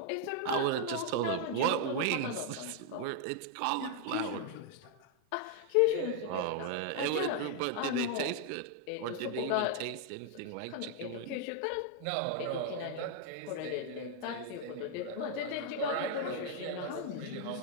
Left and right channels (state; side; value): different; both; correlation 0.00